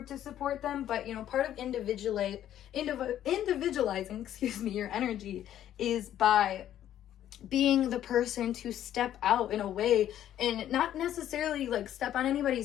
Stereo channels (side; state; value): right; quieter; 11.4 dB